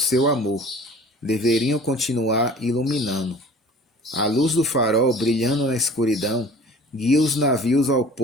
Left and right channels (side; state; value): both; normal; correlation 0.46